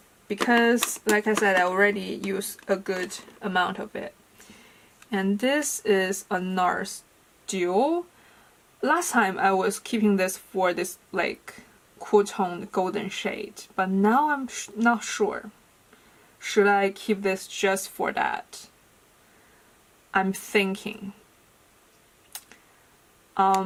because, like I said, I already use a good amount of it. And this is a NARS Duo. Last time I was keeping this for this like cool toned golden shade, but now I'm not sure. Should I keep this just for that? I'm thinking.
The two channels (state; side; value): identical; both; correlation 1.00